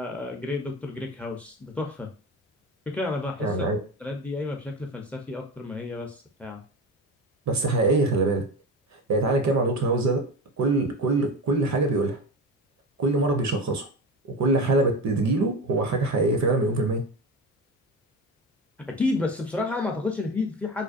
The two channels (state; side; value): normal; both; correlation 0.27